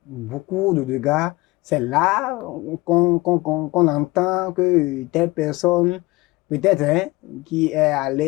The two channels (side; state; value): right; quieter; 21.5 dB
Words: Beaucoup de dégâts. C'est là qu'on entend que telle personne, peut-être, qui est